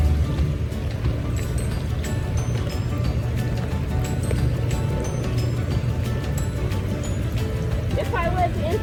If I was in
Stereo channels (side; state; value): both; identical; correlation 1.00